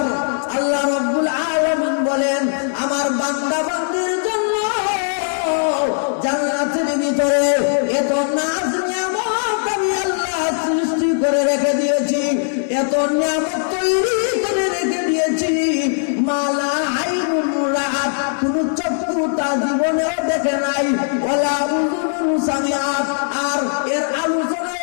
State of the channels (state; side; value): silent; right; digital silence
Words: আল্লাহ রাব্বুল আলামিন বলেন, আমার বান্দা বান্দির জন্য জান্নাতের ভিতরে এত নাজ নিয়ামত আমি আল্লাহ সৃষ্টি করে রেখে দিয়েছি, এত নিয়ামত তৈরি করে রেখে দিয়েছি, মালা আইনুন রাআত, কোন চক্ষু তা জীবনেও দেখে নাই, ওয়ালা উযুনুন সামিআত, আর এর আলোচনা